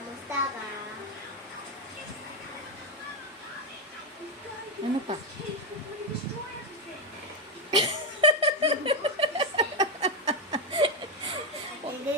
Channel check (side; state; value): both; normal; correlation 0.07